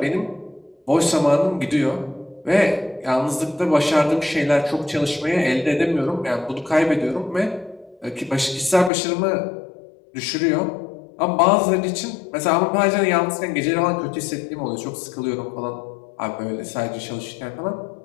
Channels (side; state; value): right; drops out; at 8.9 s